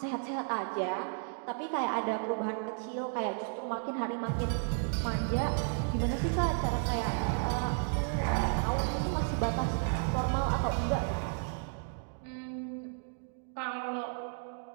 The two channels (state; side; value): silent; left; 56 dB below the other